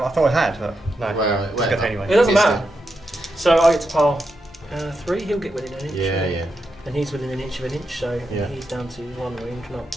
thought I had, but no. Well, It's good anyway. It doesn't It's matter. So I get to pile 3, he'll get within an inch. Yeah, yeah. And he's within an inch of an inch, so Yeah. he's down to 1 wound,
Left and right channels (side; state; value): both; normal; correlation 0.85